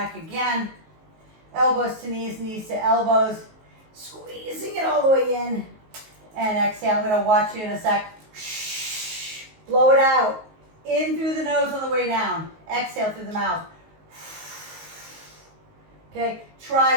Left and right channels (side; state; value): left; late; 19 ms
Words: again. Elbows to knees, knees to elbows. Squeezing it all the way in. And exhale. I'm going to watch you in a sec. Blow it out. In through the nose on the way down. Exhale through the mouth. Okay, try